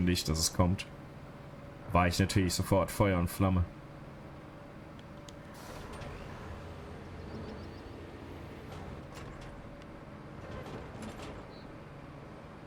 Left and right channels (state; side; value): identical; both; correlation 1.00